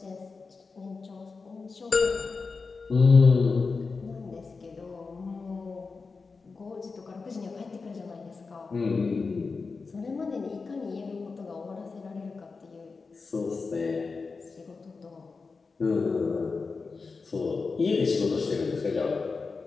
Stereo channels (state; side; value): quieter; right; 4.4 dB